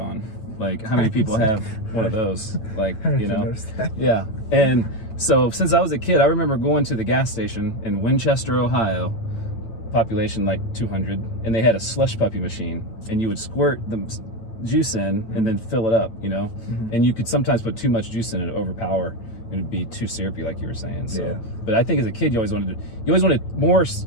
Like, how many people have one of those? Like, you know? Yeah. And so since I was a kid, I remember going to the gas station in Winchester, Ohio, population like 200, and they had a slush puppy machine, and you would squirt the juice in and then fill it up, you know, and you could sometimes put too much juice in it, overpower, and it'd be too syrupy, like you were saying. So, but I think as a kid, you always wanted more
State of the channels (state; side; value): late; right; 9.0 ms